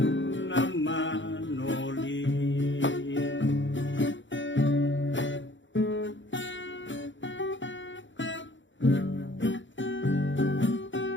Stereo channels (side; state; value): right; late; 0.54 ms